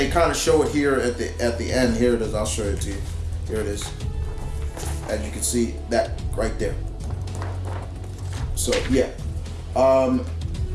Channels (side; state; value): both; identical; correlation 1.00